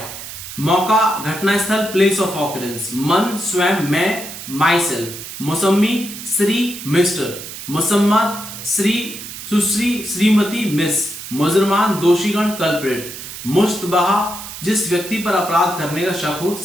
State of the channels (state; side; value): noise; right; hiss, 11 dB below the sound